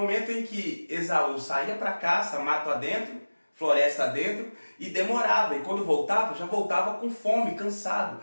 em que Esaú saía para caça, mato adentro, floresta adentro, e demorava. E quando voltava, já voltava com fome, cansado.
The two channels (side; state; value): both; inverted; correlation -1.00